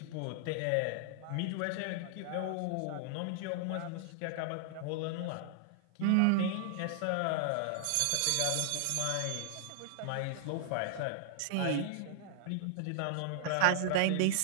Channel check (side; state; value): both; different; correlation 0.00